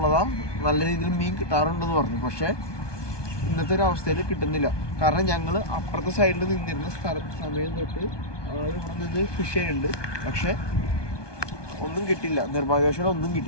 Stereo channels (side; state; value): right; late; 1.2 ms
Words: നല്ല രീതിയിൽ മീൻ കിട്ടാറുണ്ടെന്ന് പറഞ്ഞു. പക്ഷേ ഇന്നത്തെ ഒരു അവസ്ഥയിൽ കിട്ടുന്നില്ല. കാരണം ഞങ്ങൾ അപ്പുറത്തെ സൈഡിൽ നിന്നിരുന്ന സമയം തൊട്ട് ഇവിടെ നിന്ന് ഫിഷ് ചെയ്യുന്നുണ്ട്. പക്ഷെ ഒന്നും കിട്ടിയില്ല, നിർഭാഗ്യവശാലും ഒന്നും